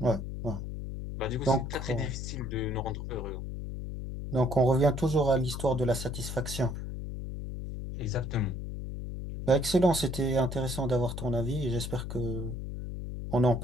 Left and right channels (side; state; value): left; noise; hum, 6 dB below the sound